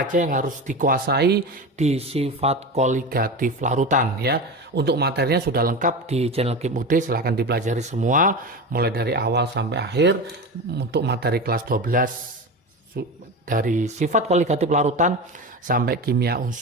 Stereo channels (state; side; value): normal; both; correlation 0.25